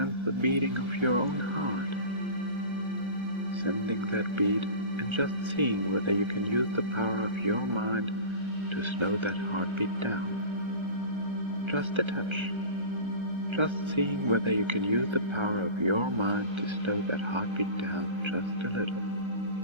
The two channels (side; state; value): left; late; 1.3 ms